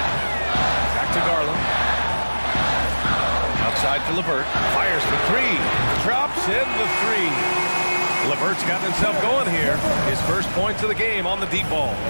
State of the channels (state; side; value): inverted; both; correlation -1.00